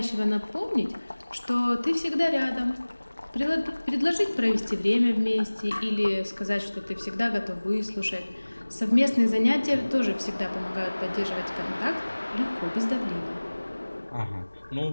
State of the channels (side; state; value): both; inverted; correlation -1.00